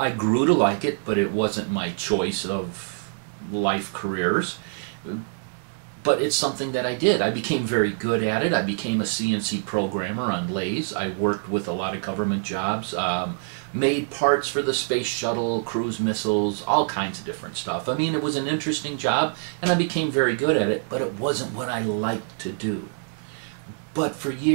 grew to like it, but it wasn't my choice of life careers. But it's something that I did. I became very good at it. I became a CNC programmer on lathes. I worked with a lot of government jobs, made parts for the space shuttle, cruise missiles, all kinds of different stuff. I mean, it was an interesting job, and I became very good at it, but it wasn't what I liked to do. But for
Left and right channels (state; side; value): silent; left; digital silence